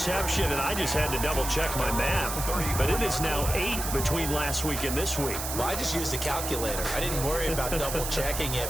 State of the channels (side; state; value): right; noise; hiss, 5 dB below the sound